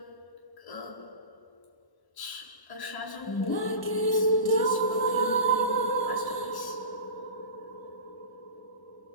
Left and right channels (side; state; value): right; late; 1.1 ms